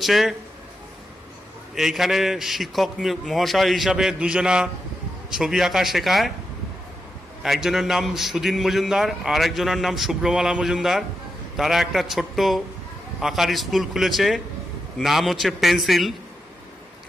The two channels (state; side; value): normal; both; correlation 0.87